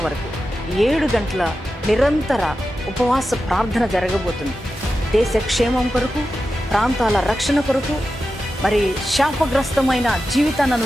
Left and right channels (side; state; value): both; normal; correlation 0.91